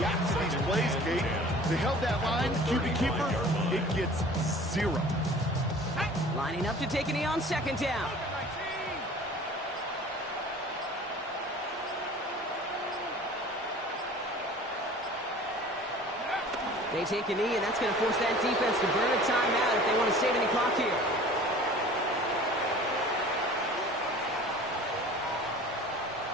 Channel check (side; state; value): both; normal; correlation 0.45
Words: to these plays, Kate. They held that line, QB keeper, it gets 0. Lining up to take a knee on second down. They take a knee, and that's going to force that defense to burn a timeout if they want to save any clock here.